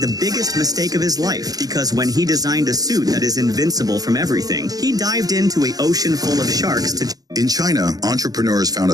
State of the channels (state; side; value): late; left; 0.18 ms